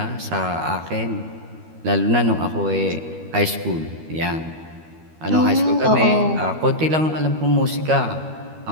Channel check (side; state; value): left; late; 13 ms